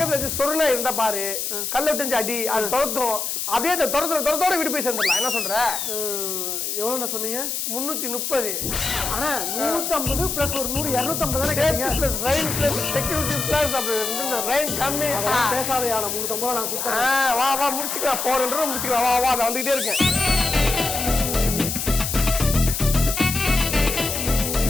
வச்சு சொருணா இருந்தா பாரு, கல்ல விட்டு அடி, அது துரத்தும். அப்படியே அந்த துரத்தோட வீடு போய் சேர்ந்துடலாம். என்ன சொல்ற? எவ்வளவு சொன்னீங்க? 330. ஆனா 150 பிளஸ் ஒரு 100 250 தானே கேட்டீங்க. Plus rain plus security plus அப்படி இந்த ரெயின் கம்மி. பேசாதயா, 350 நான் கொடுத்தேன். வா வா முடிச்சுக்கலாம். 400 முடிச்சுக்கலாம். வா வா நான் வந்துகிட்டே இருக்கேன்.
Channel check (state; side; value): noise; left; hiss, 3 dB below the sound